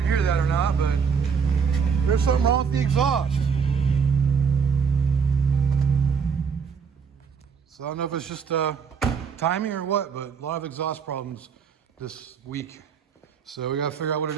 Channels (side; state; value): left; quieter; 6.3 dB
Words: hear that or not, but there's something wrong with the exhaust. So I don't know if it's just timing or what, but a lot of exhaust problems this week. So we gotta figure out what it